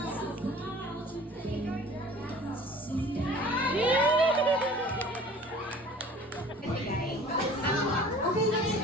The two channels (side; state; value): both; normal; correlation 0.47